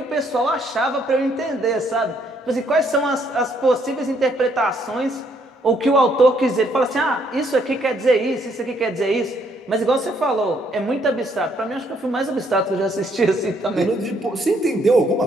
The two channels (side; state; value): both; normal; correlation 0.69